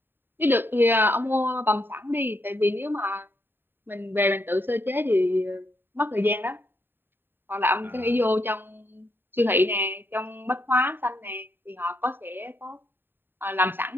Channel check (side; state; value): left; late; 0.097 ms